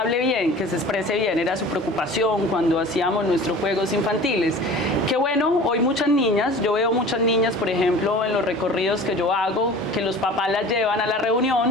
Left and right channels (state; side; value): normal; both; correlation 0.41